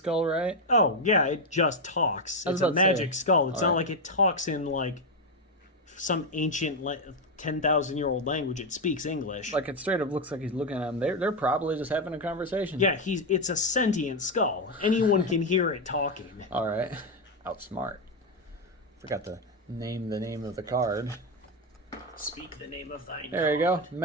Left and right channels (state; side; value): normal; both; correlation 0.06